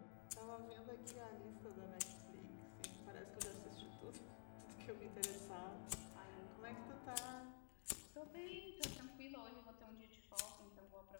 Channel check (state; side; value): silent; right; digital silence